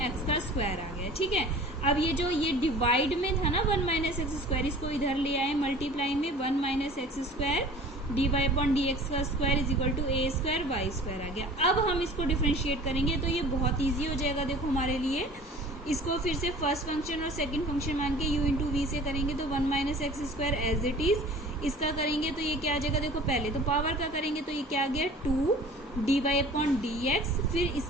का स्क्वायर आ गया, ठीक है। अब ये डिवाइड में था ना 1 माइनस एक्स स्क्वायर, इसको इधर ले आए मल्टीप्लाई में 1 minus x square dy upon d x का square is equal to a square y square आ गया। अब हम इसको डिफ्रेंशिएट करेंगे तो ये बहुत ईजी हो जाएगा। देखो हमारे लिए इसको फिर से फर्स्ट फंक्शन और सेकंड फंक्शन मान के u इंटू वी से करेंगे तो 1 minus x square as it is, इसका करेंगे तो ये क्या आ जाएगा, देखो पहले तो पावर का करेंगे तो ये क्या आ गया 2 d y upon d x, फिर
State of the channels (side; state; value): both; normal; correlation 0.44